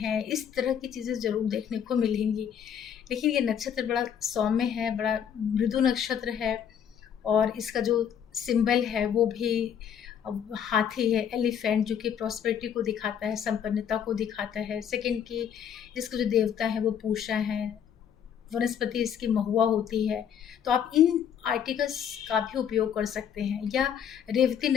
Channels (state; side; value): quieter; right; 8.5 dB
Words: इस तरह की चीज़ें ज़रूर देखने को मिलेंगी। लेकिन ये नक्षत्र बड़ा सौम्य है, बड़ा मृदु नक्षत्र है और इसका जो सिंबल है वो भी हाथी है, एलिफेंट, जो कि प्रॉस्पेरिटी को दिखाता है, संपन्नता को दिखाता है। सेकंड की इसके जो देवता है वो पूषा है, वनस्पति इसकी महुआ होती है। तो आप इन आर्टिकल्स का भी उपयोग कर सकते हैं। या रेवती